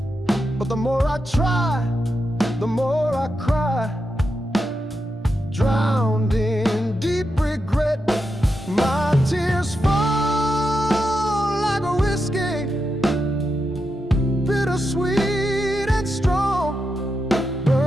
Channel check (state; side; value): normal; both; correlation 0.86